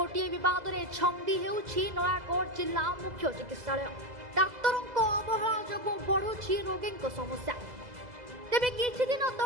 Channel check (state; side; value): late; left; 2.0 ms